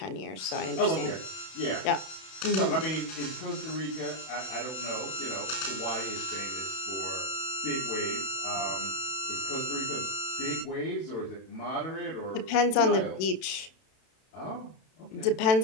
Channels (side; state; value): right; late; 31 ms